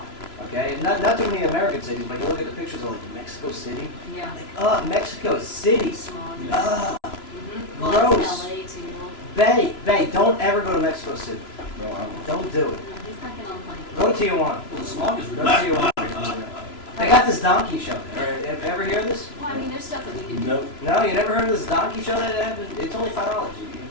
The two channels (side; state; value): right; late; 3.0 ms